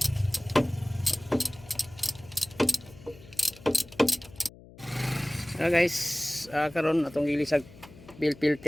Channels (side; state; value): left; noise; hum, 21 dB below the sound